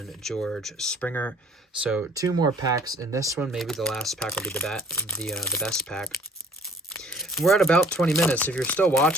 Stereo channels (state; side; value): normal; both; correlation 0.53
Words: George Springer. So 2 more packs in this one. Maybe the last pack will be the best pack. We're at about 20 minutes. If you're still